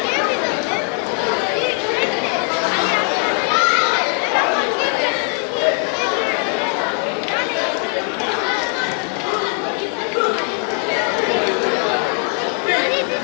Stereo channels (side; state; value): right; quieter; 39.2 dB